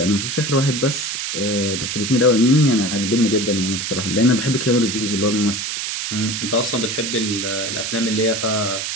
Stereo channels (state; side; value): noise; right; hiss, 3 dB below the sound